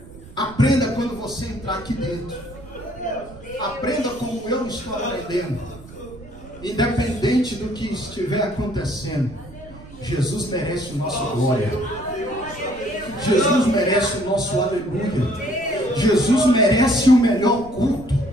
Aprenda quando você entrar aqui dentro. Aprenda como eu estou aprendendo. Independente do que estiver acontecendo, Jesus merece o nosso glória. Jesus merece o nosso aleluia. Jesus merece o melhor culto.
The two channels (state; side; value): noise; right; rumble, 18 dB below the sound